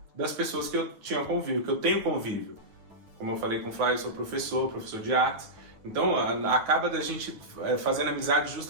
das pessoas que eu tinha convívio, que eu tenho convívio. Como eu falei com o Flávio, eu sou professor de artes. Então, acaba da gente fazendo amizade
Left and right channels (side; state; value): left; late; 9.5 ms